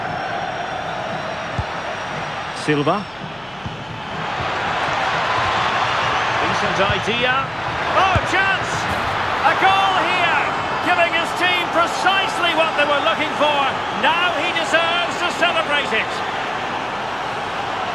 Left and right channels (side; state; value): left; noise; hum, 27 dB below the sound